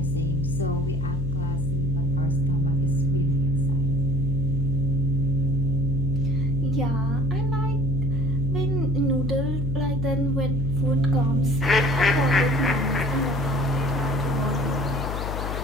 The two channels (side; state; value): left; noise; hum, 3 dB below the sound